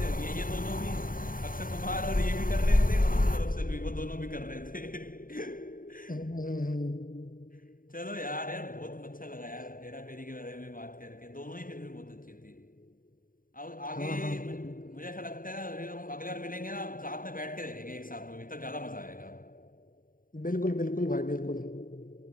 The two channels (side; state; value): right; late; 0.40 ms